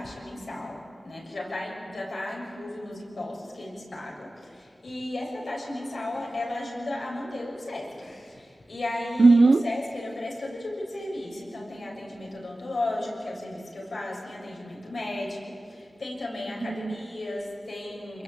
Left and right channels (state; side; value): normal; both; correlation 0.96